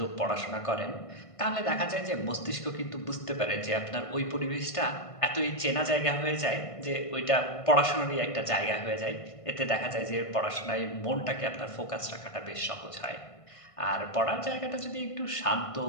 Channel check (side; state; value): right; late; 1.5 ms